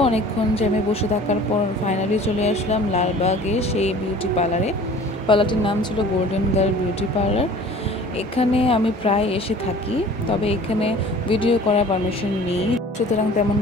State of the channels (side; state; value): both; normal; correlation 0.46